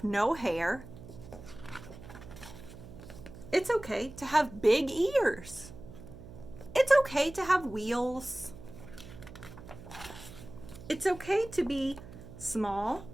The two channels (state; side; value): noise; right; hum, 15 dB below the sound